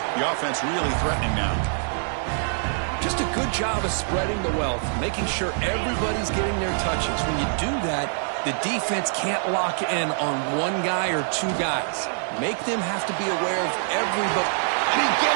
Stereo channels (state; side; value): silent; left; digital silence